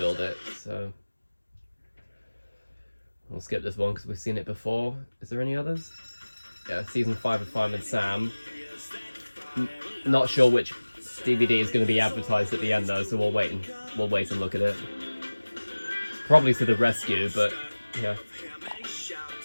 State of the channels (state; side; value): inverted; both; correlation -1.00